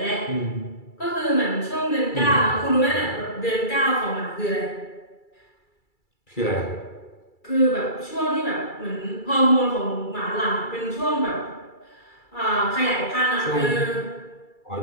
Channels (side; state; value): right; late; 2.3 ms